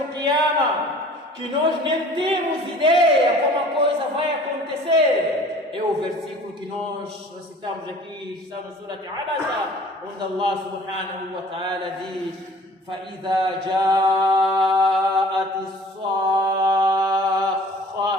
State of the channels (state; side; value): normal; both; correlation 0.48